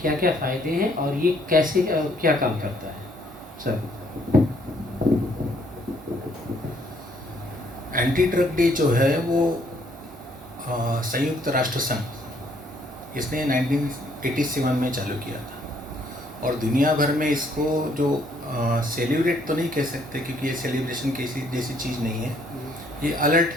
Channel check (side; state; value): both; normal; correlation 0.66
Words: क्या-क्या फ़ायदे हैं और ये कैसे क्या काम करता है? सर। एंटी ड्रग डे जो है वो संयुक्त राष्ट्र संघ इसने 1987 में चालू किया था और दुनिया भर में इसको जो सेलिब्रेट तो नहीं कह सकते क्योंकि ये सेलिब्रेशन किसी जैसी चीज़ नहीं है, ये अलर्ट